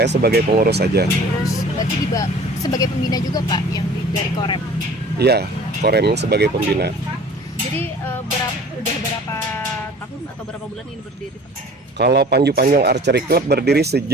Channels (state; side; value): normal; both; correlation 0.46